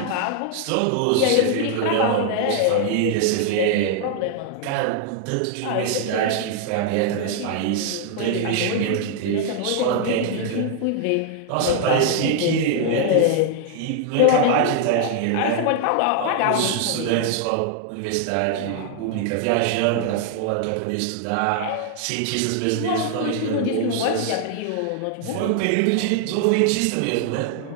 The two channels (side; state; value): both; different; correlation 0.00